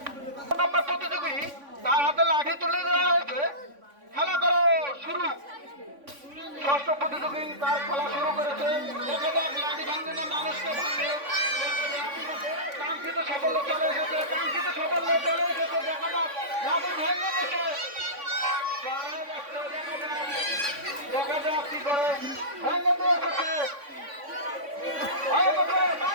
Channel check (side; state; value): left; late; 3.5 ms